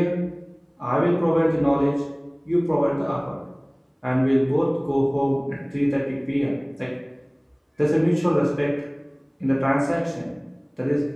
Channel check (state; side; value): identical; both; correlation 1.00